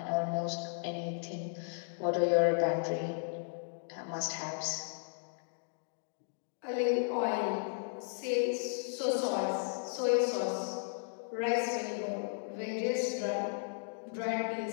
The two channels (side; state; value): right; silent; digital silence